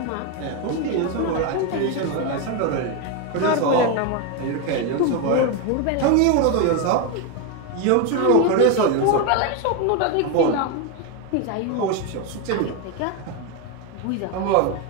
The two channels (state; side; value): different; both; correlation 0.02